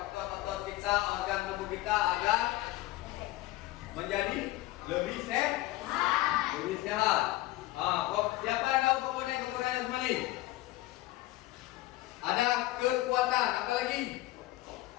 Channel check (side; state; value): right; quieter; 17.9 dB